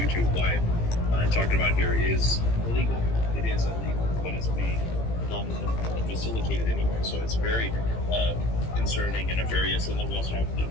live and talking about here is illegal. It is illegal, but it's being facilitated anyway. So it's very concerning and nefarious. And then we also have,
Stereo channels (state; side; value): late; right; 18 ms